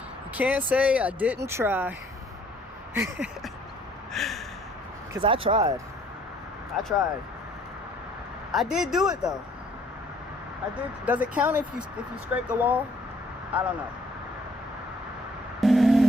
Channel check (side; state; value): both; normal; correlation 0.61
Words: You can't say I didn't try. Because I tried. I did do it though. I did. Does it count if you scrape the wall? I don't know.